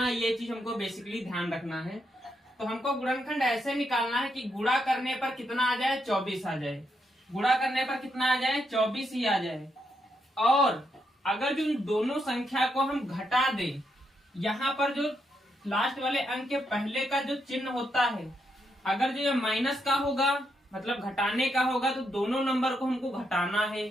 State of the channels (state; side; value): normal; both; correlation 0.80